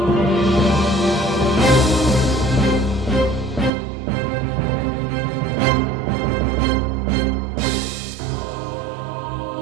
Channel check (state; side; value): drops out; left; at 3.7 s